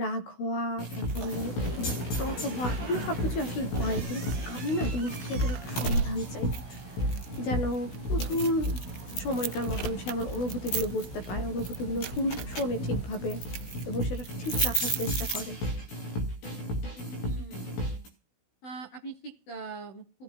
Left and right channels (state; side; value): late; right; 16 ms